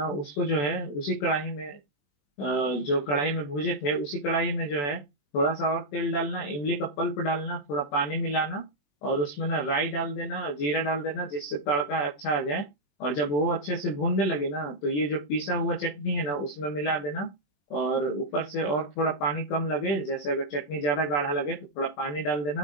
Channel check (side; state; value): right; late; 21 ms